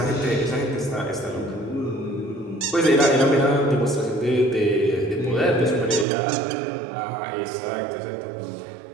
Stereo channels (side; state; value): left; drops out; at 6.1 s